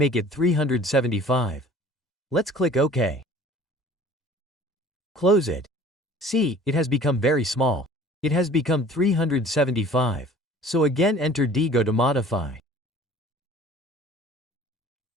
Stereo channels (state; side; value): normal; both; correlation 0.48